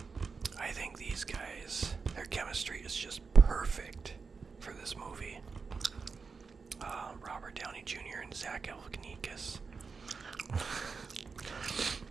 I think these guys, their chemistry is just perfect for this movie. Robert Downey Jr. and Zach Galifianakis.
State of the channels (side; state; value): left; quieter; 5.0 dB